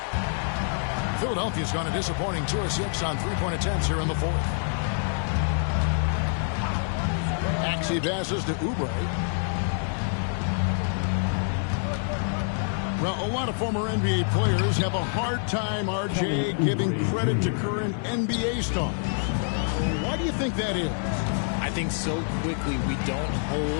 Philadelphia's gone a disappointing 2 of 6 on three-point attempts here in the fourth. Maxey passes to Oubre. Well, a lot of former NBA players have a hard time, RJ, giving credit to current NBA stars. Why do you think that is? I think so quickly we don't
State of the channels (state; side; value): silent; right; 61 dB below the other